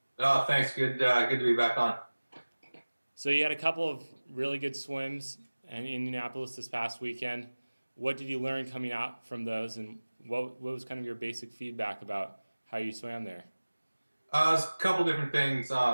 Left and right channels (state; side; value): inverted; both; correlation -1.00